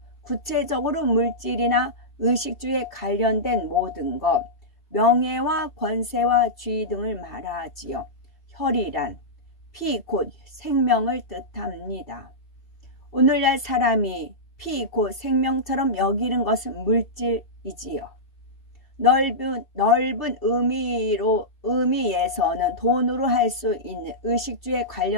구체적으로 물질이나 의식주에 관련된 모든 것, 명예와 권세와 지위 등을 말하지요. 혈이란 피 곧 생명을 뜻합니다. 오늘날 사람이 피 곧 생명처럼 여기는 것은 물질이지요. 넓은 의미에서는 돈으로 할 수 있는 의식주에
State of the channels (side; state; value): right; late; 2.7 ms